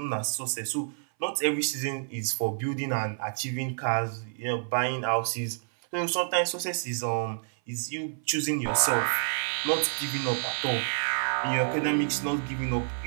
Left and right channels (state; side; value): silent; left; 59 dB below the other